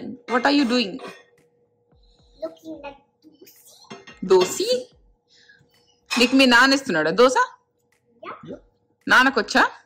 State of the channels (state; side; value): identical; both; correlation 1.00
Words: what are you doing? Dosa నీకు మీ నాన్న ఇస్తున్నాడా దోశ? నాన్నకొచ్చా?